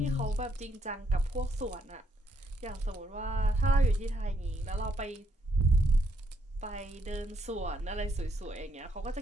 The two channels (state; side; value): normal; both; correlation 0.73